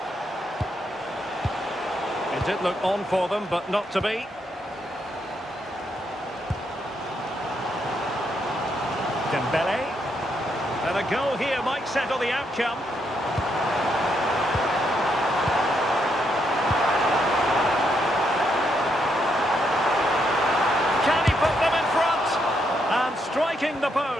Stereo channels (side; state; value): both; normal; correlation 0.77